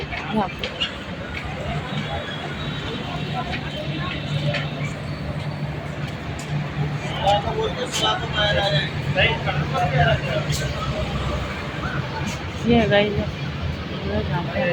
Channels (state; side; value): identical; both; correlation 1.00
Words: यहाँ पे ये है गाइस, जहाँ पे